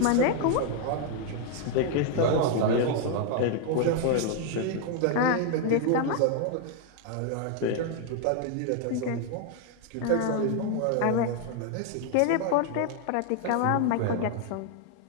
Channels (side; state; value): both; different; correlation 0.00